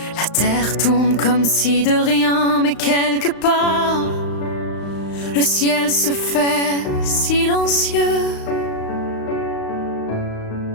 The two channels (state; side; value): late; right; 35 ms